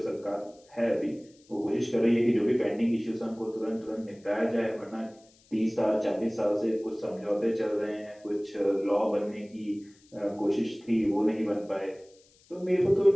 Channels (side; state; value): left; noise; hiss, 30 dB below the sound